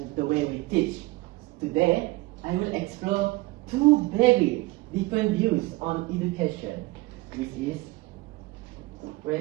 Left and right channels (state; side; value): quieter; left; 21.5 dB